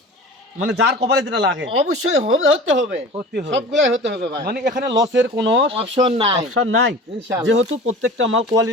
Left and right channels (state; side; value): normal; both; correlation 0.38